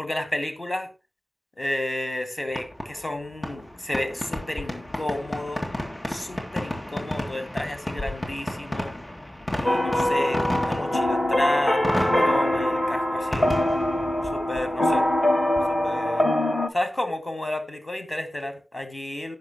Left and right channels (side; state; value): both; normal; correlation 0.95